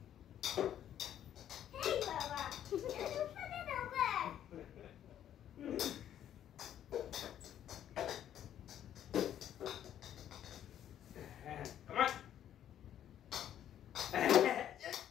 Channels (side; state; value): right; quieter; 10.7 dB